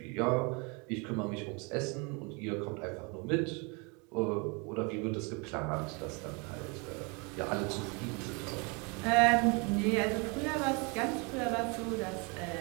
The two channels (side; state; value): left; quieter; 30.9 dB